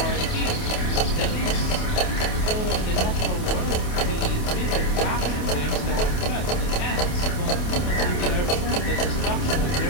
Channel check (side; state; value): right; late; 28 ms